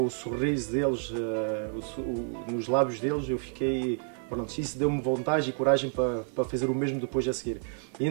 o sorriso deles, nos lábios deles, eu fiquei, pronto, isso deu-me vontade e coragem para fazer o mesmo depois a seguir. E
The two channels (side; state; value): left; silent; 58 dB below the other